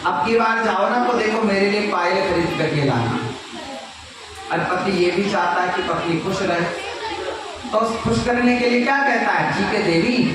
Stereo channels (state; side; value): identical; both; correlation 1.00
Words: अब की बार जाओ ना तो देखो मेरे लिए पायल खरीद करके लाना। और पति ये भी चाहता है कि पत्नी खुश रहे, तो खुश करने के लिए क्या कहता है, ठीक है देवी,